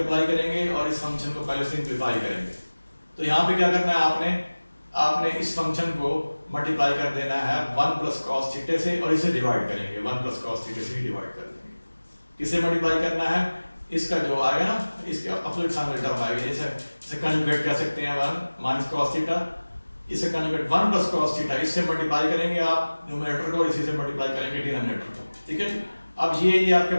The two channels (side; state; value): both; inverted; correlation -1.00